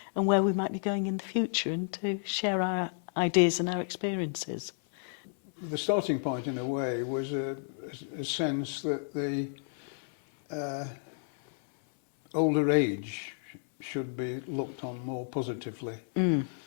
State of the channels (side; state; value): right; silent; 57 dB below the other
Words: and where we might be going in the future, and to share our ideas and our experiences. The starting point, in a way, was a sense that the older age should be looked on more positively and